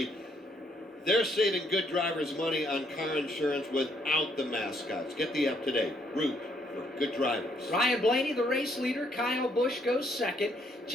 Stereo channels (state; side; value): normal; both; correlation 0.70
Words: They're saving good drivers money on car insurance without the mascots. Get the up to date. Root. Good drivers. Ryan Blaney, the race leader. Kyle Busch goes 2nd.